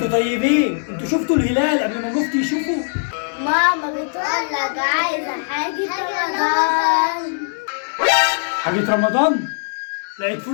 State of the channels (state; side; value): silent; right; digital silence